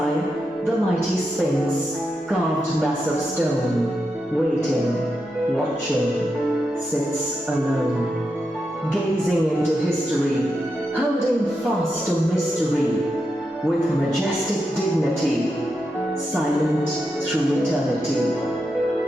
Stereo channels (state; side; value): normal; both; correlation 0.86